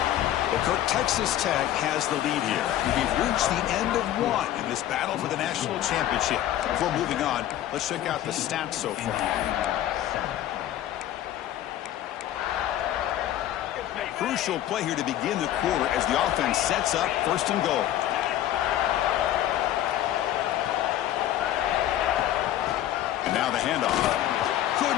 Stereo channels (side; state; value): right; quieter; 12.6 dB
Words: Well, Kirk, Texas Tech has the lead here. We've reached the end of one in this battle for the national championship. Before moving on, let's check out the stats so far. Crucial play here to begin the quarter as the offense sets up first and goal. And now the handoff.